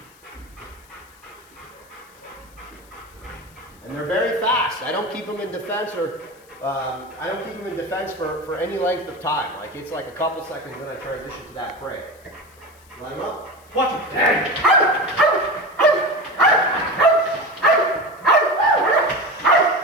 And And they're very fast. I don't keep them in defense or for any length of time. Like it's like a couple seconds, then I transition to that prey. Line them up. Watch it.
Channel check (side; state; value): left; noise; hiss, 28 dB below the sound